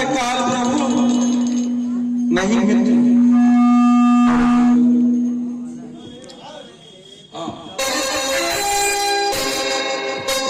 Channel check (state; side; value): identical; both; correlation 1.00